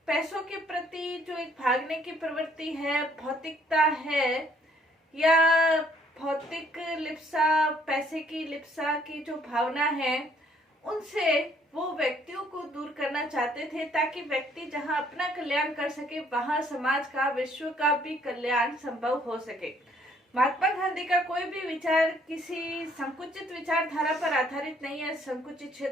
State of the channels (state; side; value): normal; both; correlation 0.64